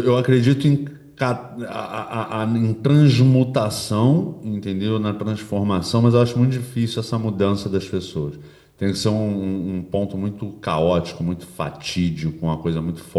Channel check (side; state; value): both; identical; correlation 1.00